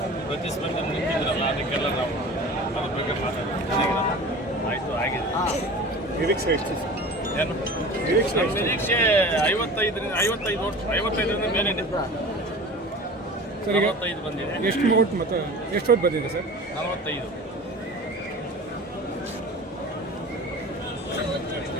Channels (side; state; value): both; normal; correlation 0.37